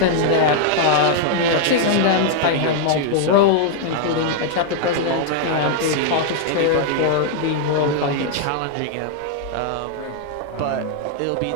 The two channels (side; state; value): both; different; correlation 0.00